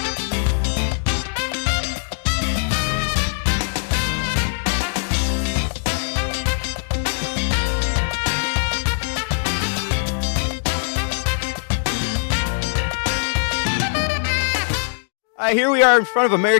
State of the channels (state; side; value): silent; right; digital silence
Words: Here we are in front of